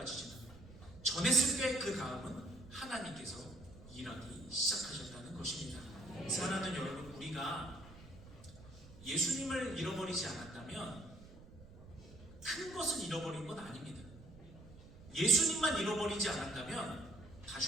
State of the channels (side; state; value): right; noise; rumble, 19 dB below the sound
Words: 전했을 때 그 다음은 하나님께서 일하기 시작하셨다는 것입니다. 사랑하는 여러분, 우리가 예수님을 잃어버리지 않았다면 큰 것을 잃어버린 건 아닙니다. 예수님만 잃어버리지 않았다면